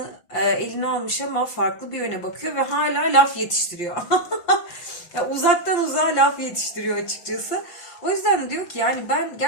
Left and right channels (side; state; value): right; late; 5.7 ms